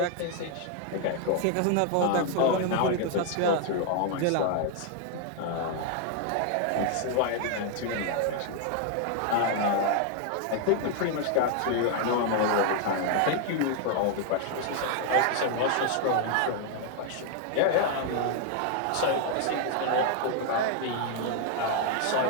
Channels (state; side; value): different; both; correlation 0.00